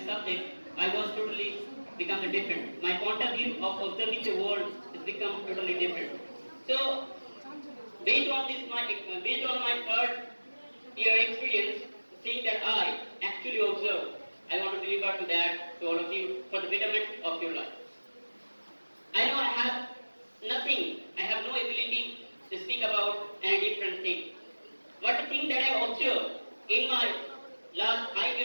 subject, I was totally become different. My point of view of observing the world has become totally different. So based on my third year experience, the thing that I actually observed, I want to deliver to that to all of you for the betterment of your life. I know I have nothing, I have no ability to speak about any different thing. But the thing that I observed in my last 5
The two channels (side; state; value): both; inverted; correlation -1.00